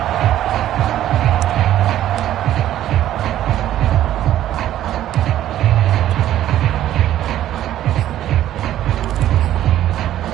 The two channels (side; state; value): left; quieter; 12.5 dB